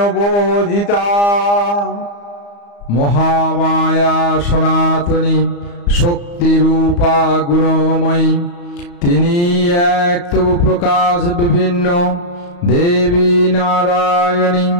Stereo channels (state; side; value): late; right; 35 ms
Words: বোধিতা। মহামায়া সনাতনী শক্তিরূপা গুণময়ী, তিনি এক তবু প্রকাশ বিভিন্ন দেবী নারায়ণী।